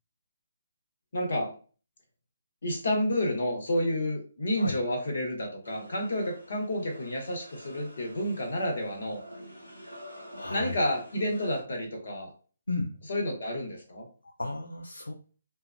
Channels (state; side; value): inverted; both; correlation -0.79